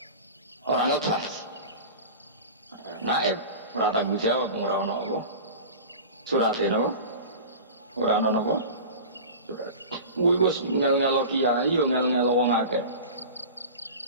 Orang lepas. Naib ora tanggung jawab ora ono apa. Surate napa? Ora ono napa? Surat. Kuwi wis ngel-ngelo kiai yo ngel-ngelo wong akeh.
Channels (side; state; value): both; inverted; correlation -0.34